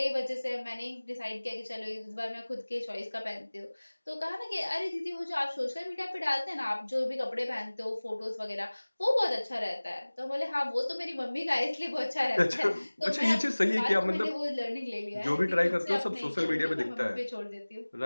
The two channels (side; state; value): both; inverted; correlation -1.00